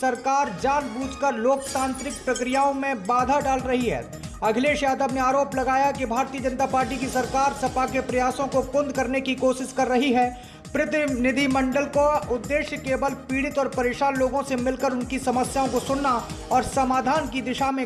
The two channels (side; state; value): both; identical; correlation 1.00